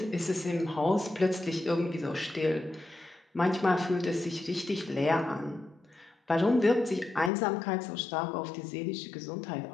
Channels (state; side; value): drops out; right; at 7.3 s